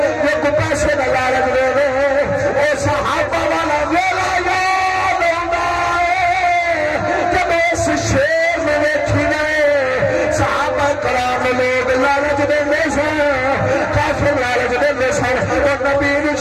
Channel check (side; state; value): both; identical; correlation 1.00